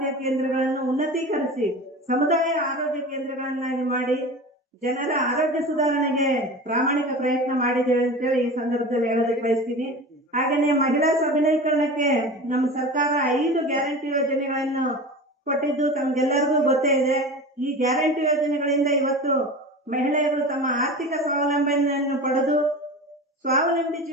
ಕೇಂದ್ರಗಳನ್ನು ಉನ್ನತೀಕರಿಸಿ ಸಮುದಾಯ ಆರೋಗ್ಯ ಕೇಂದ್ರಗಳನ್ನಾಗಿ ಮಾಡಿ ಜನರ ಆರೋಗ್ಯ ಸುಧಾರಣೆಗೆ ಪ್ರಾಮಾಣಿಕ ಪ್ರಯತ್ನ ಮಾಡಿದ್ದೇವೆ ಅಂತೇಳಿ ಈ ಸಂದರ್ಭದಲ್ಲಿ ಹೇಳೋದಕ್ಕೆ ಬಯಸ್ತೀನಿ. ಹಾಗೆಯೇ ಮಹಿಳಾ ಸಬಲೀಕರಣಕ್ಕೆ ನಮ್ಮ ಸರ್ಕಾರ 5 ಗ್ಯಾರಂಟಿ ಯೋಜನೆಗಳನ್ನು ಕೊಟ್ಟಿದ್ದು ತಮ್ಗೆಲ್ಲರಿಗೂ ಗೊತ್ತೇ ಇದೆ. ಈ ಗ್ಯಾರಂಟಿ ಯೋಜನೆಗಳಿಂದ ಇವತ್ತು ಮಹಿಳೆಯರು ತಮ್ಮ ಆರ್ಥಿಕ ಸ್ವಾವಲಂಬನೆಯನ್ನು ಪಡೆದು ಸ್ವಾವಲಂಬಿ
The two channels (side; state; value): both; normal; correlation 0.32